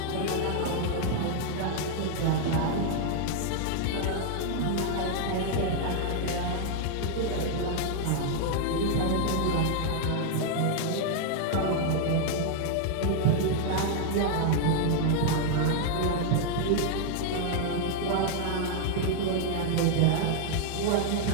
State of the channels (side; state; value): both; different; correlation 0.00